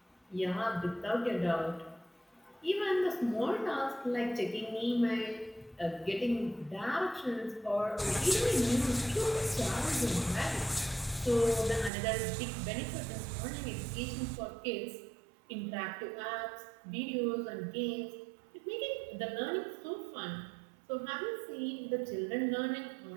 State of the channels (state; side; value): drops out; left; at 11.9 s